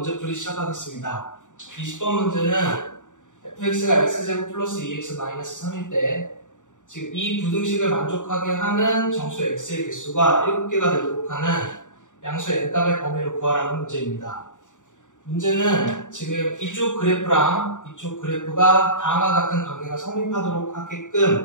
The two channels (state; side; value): late; right; 0.86 ms